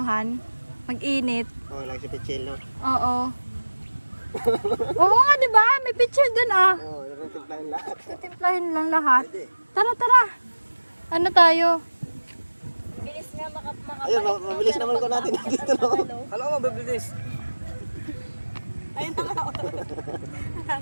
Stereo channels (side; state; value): both; inverted; correlation -1.00